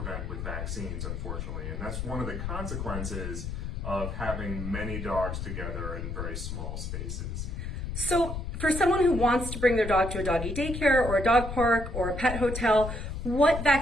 with vaccines, unfortunately. And that's one of the consequences of having many dogs together in very small spaces. So for someone who wants to bring their dog to a doggy daycare or a dog park or a pet hotel, what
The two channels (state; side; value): noise; left; rumble, 5 dB below the sound